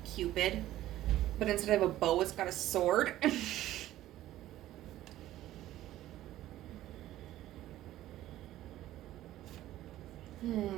Cupid. But instead of a bow, it's got a sword.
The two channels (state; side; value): quieter; left; 14.3 dB